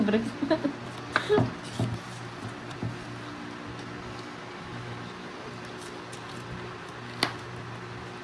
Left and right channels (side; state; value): both; identical; correlation 1.00